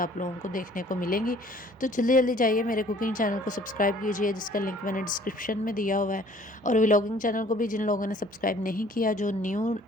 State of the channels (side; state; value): both; normal; correlation 0.55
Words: लोगों को देखने को मिलेंगी। तो जल्दी जल्दी जाइए मेरे कुकिंग चैनल को सब्सक्राइब कीजिए, जिसका लिंक मैंने डिस्क्रिप्शन में दिया हुआ है। और व्लॉगिंग चैनल को भी जिन लोगों ने सब्सक्राइब नहीं किया, जो न्यू